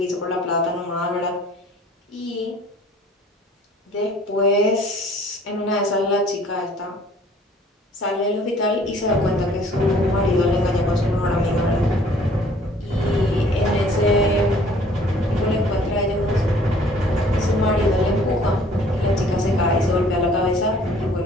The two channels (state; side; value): normal; both; correlation 0.55